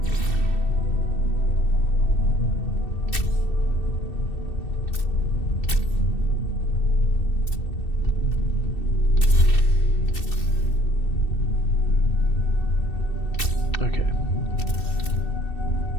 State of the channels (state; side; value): late; right; 2.7 ms